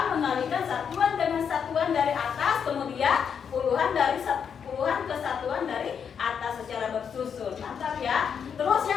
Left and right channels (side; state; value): right; quieter; 7.2 dB